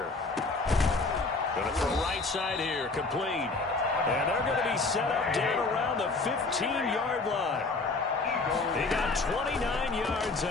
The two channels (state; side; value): quieter; right; 3.7 dB